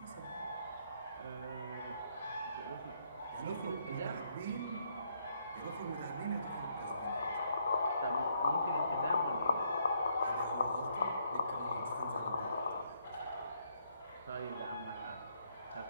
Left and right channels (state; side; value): inverted; both; correlation -0.72